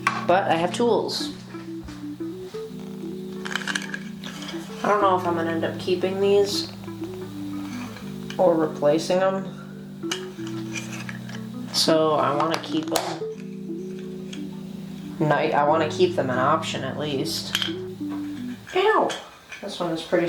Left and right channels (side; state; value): both; identical; correlation 1.00